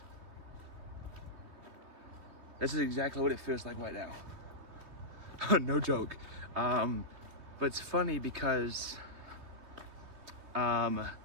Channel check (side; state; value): left; late; 3.3 ms